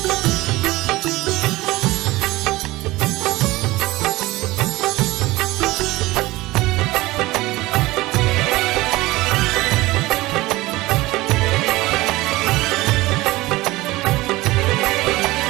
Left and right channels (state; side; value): quieter; left; 19.5 dB